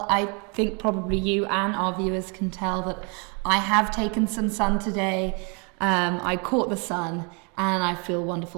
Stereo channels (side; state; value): left; quieter; 33.5 dB